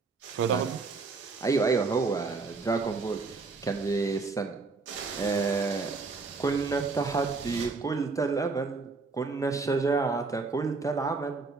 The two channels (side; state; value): left; quieter; 4.2 dB